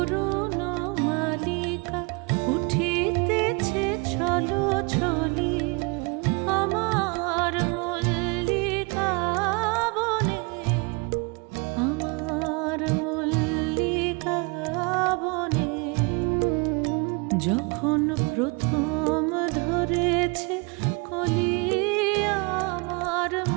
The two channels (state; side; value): quieter; left; 30.9 dB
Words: মালিকা উঠিতেছে ছলো ছলি আমার মল্লিকা বনে, আমার মল্লিকা বনে। যখন প্রথম ধরেছে কলি আমার